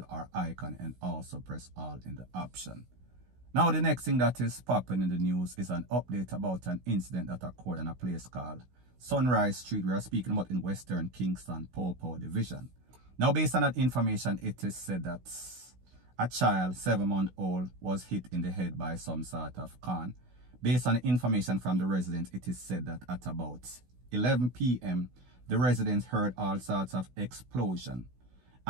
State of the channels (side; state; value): left; late; 16 ms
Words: or icon, and also press all in the option. Now, the next thing that is popping in the news is an update about an incident that occurred in a place called Sunrise Street. We are speaking about in Western Kingston, Popo Division. Now, based on that information, it is said that a child, 7-month-old, was hit in the head by some sort of can. Based on the information from the residents, it is said that at about 11 p.m., the residents heard all sorts of explosion.